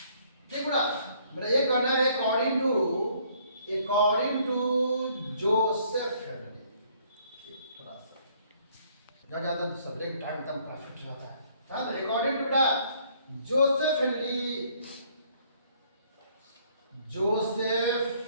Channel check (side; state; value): both; inverted; correlation -0.63